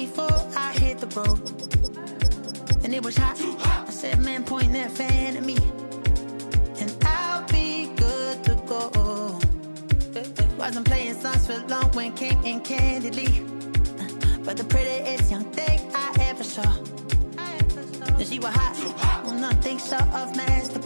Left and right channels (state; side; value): inverted; both; correlation -1.00